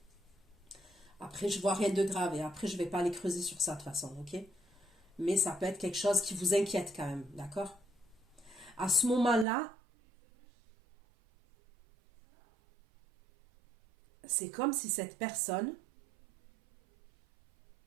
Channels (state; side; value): drops out; left; at 9.5 s